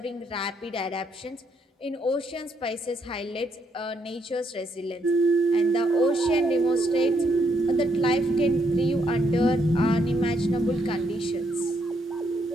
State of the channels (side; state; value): both; normal; correlation 0.75